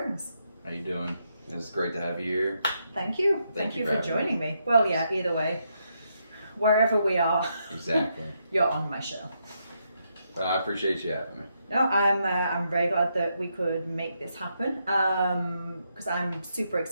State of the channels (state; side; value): inverted; both; correlation -0.80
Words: How you doing? It's great to have you here. Thank you. Thank you for for joining me. Well, yeah, either way, wherever we are, Exactly. you're on my show. I appreciate you having me. No, I'm very glad that we could make this happen because I'm super